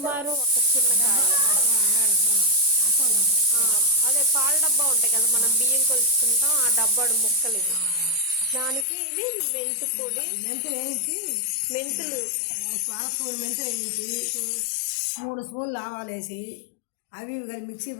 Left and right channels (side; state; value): right; drops out; at 8.8 s